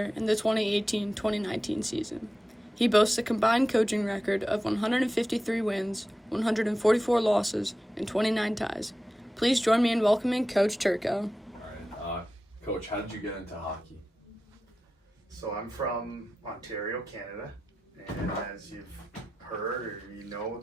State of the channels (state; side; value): normal; both; correlation 0.93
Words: in the 2018-2019 season. He boasts a combined coaching record of 153 wins, 144 losses, and 29 ties. Please join me in welcoming Coach Turco. All right, Coach, how did you get into hockey? So I'm from Ontario, Canada, and as you've heard or you know,